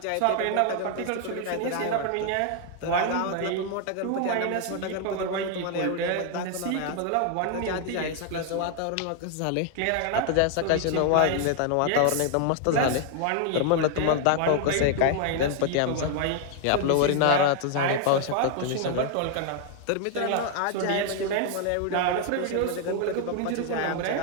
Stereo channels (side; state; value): both; different; correlation 0.00